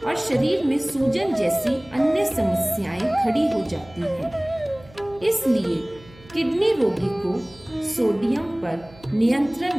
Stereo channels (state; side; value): noise; right; hum, 23 dB below the sound